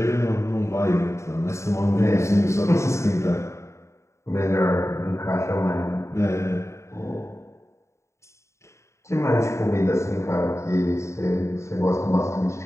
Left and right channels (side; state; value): right; late; 0.14 ms